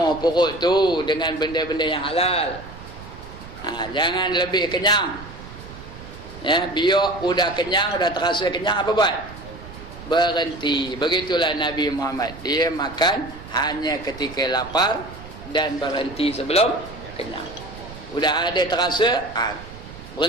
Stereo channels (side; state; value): right; noise; rumble, 15 dB below the sound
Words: perut tu dengan benda-benda yang halal. Jangan lebih kenyang. Ya, biar udah kenyang, udah terasa kenyang, apa buat? Berhenti. Begitulah Nabi Muhammad. Dia makan hanya ketika lapar dan berhenti sebelum kenyang. Udah ada terasa,